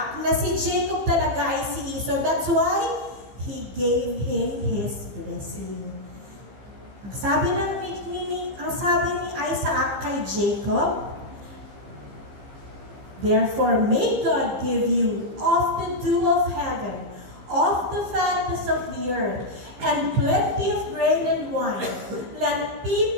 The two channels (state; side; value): late; left; 15 ms